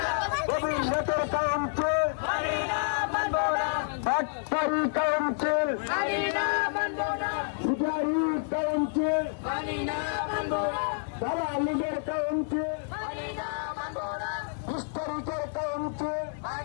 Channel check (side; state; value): right; silent; 59 dB below the other